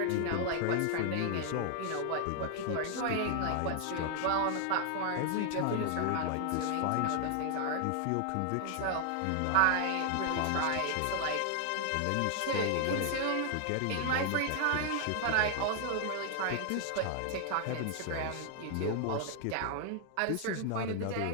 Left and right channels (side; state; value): both; different; correlation 0.00